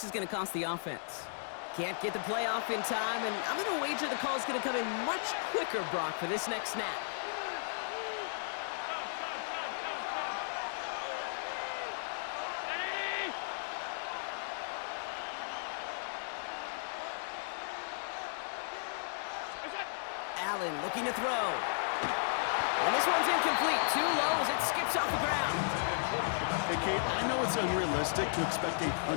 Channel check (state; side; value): silent; right; digital silence